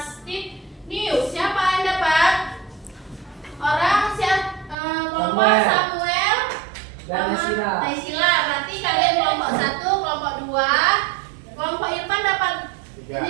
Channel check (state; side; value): drops out; left; at 4.8 s